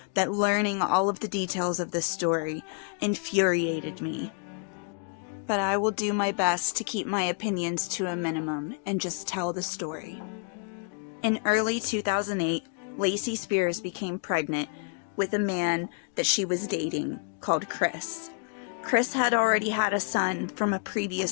that learning all of the details of this story infuriated me. But I will do my best to keep my opinions to a minimum and just tell the story. In early 2008, Lacey Spears became pregnant with a man that she was dating called Chris. Chris had already had a son from a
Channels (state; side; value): quieter; right; 33.2 dB